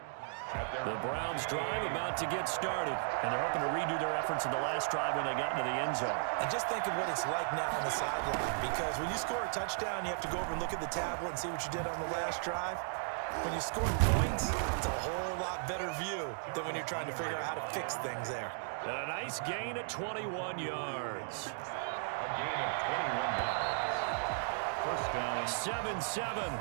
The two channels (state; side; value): silent; left; digital silence